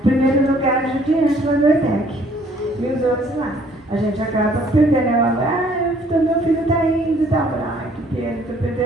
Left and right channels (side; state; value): both; normal; correlation 0.60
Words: primeiro lugar de diante lá no ETEC. E os outros lá. A gente acaba perdendo o aluno. Meu filho está indo e tal. Ai, que pena, estou